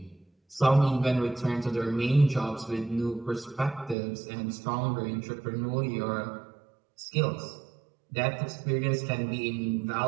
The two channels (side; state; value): left; drops out; at 4.0 s